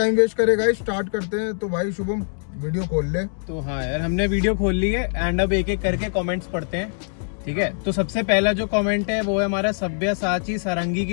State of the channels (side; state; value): right; silent; 63 dB below the other